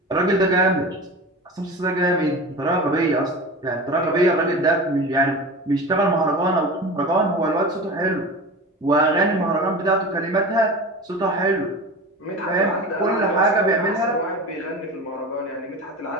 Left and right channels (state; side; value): normal; both; correlation 0.32